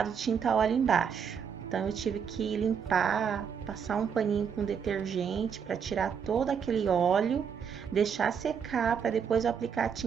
tinta óleo embaixo. Então, eu tive que limpar, passar um paninho com detergente para tirar todo aquele óleo, deixar secar para depois eu aplicar a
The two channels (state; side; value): quieter; left; 7.1 dB